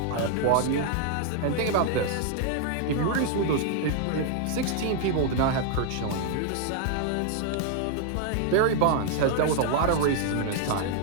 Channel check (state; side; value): different; both; correlation 0.00